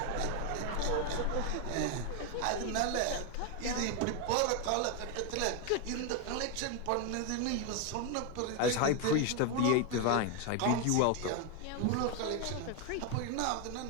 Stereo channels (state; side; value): different; both; correlation 0.01